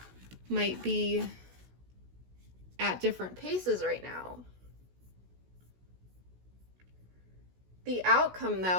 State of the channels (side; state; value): left; late; 16 ms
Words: might be at different paces right now. The outcome,